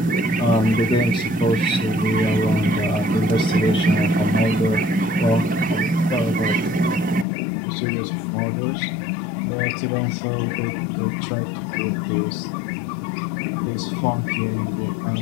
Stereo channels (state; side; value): drops out; right; at 7.2 s